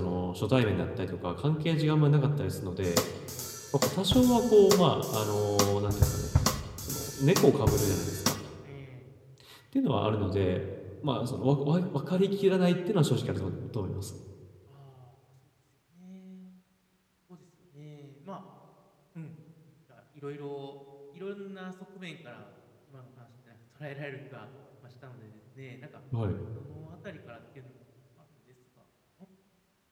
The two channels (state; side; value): identical; both; correlation 1.00